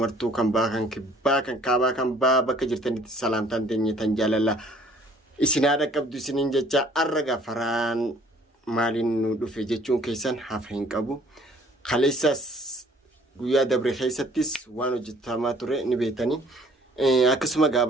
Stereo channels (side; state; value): both; normal; correlation 0.57